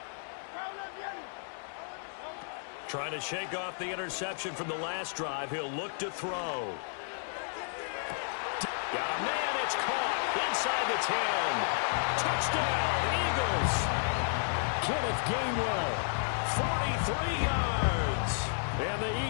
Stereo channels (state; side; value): silent; right; digital silence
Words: Trying to shake off the interception from the last drive. He'll look to throw. Got a man. It's caught inside the 10. Touchdown, Eagles. Kenneth Gainwell. 43 yards. And the